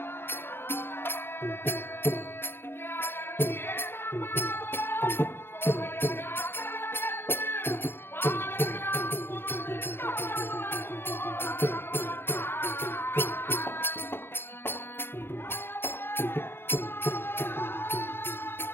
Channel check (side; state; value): right; late; 0.11 ms